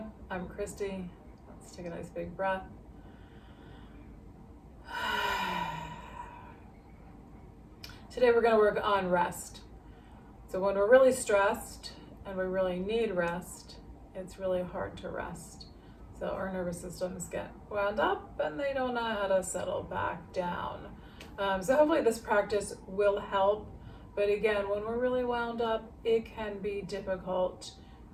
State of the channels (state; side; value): identical; both; correlation 1.00